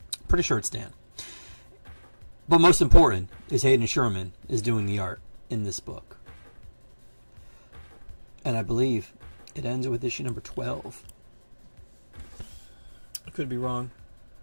Pretty sure it's Dan. But most important is Hayden Sherman is doing the art in this book. And I believe it ends with issue number 12. I could be wrong.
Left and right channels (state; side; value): inverted; both; correlation -1.00